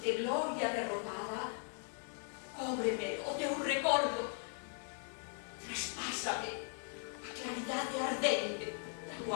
gloria derrotada, cóbreme o teu recordo, traspásame a claridade ardente da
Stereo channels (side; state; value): right; quieter; 38.7 dB